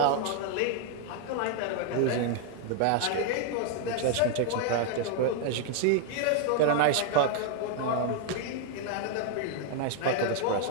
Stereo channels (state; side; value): different; both; correlation 0.00